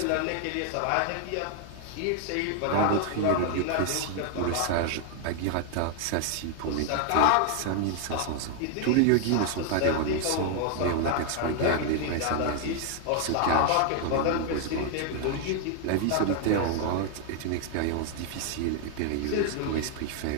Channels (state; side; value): different; both; correlation 0.00